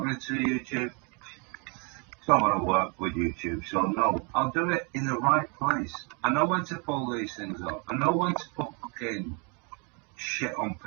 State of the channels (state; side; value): quieter; left; 32.5 dB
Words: to YouTube. It's not going to work with YouTube, so no. I'll do it in the right place. I know when to pull these things up. I know when to put fucking shit on